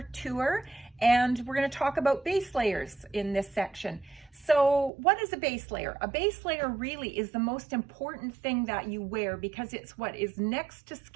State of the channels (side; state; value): left; drops out; at 4.9 s